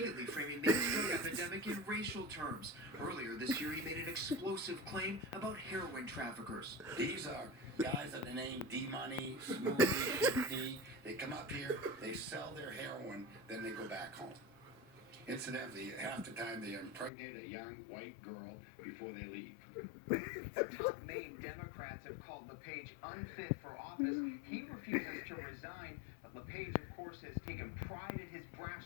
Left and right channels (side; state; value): right; drops out; at 17.1 s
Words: framing Maine's drug epidemic in racial terms. Earlier this year, he made an explosive claim about heroin traffickers. These are guys that the name D-Money, Smoothy, Shifty. They come up here, they sell their heroin, then they go back home. Incidentally, half the time they impregnate a young white girl before they leave. Top Maine Democrats have called LePage unfit for office. He refuses to resign, but LePage, of course, has taken pride in his brash